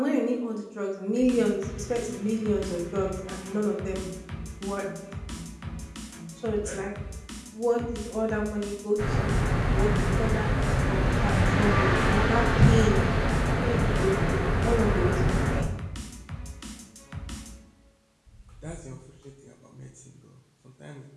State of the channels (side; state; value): both; identical; correlation 1.00